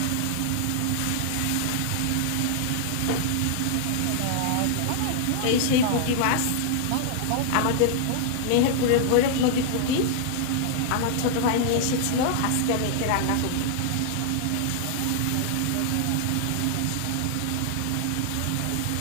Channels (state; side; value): different; both; correlation -0.01